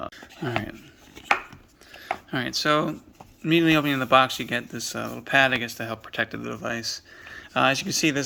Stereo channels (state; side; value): identical; both; correlation 1.00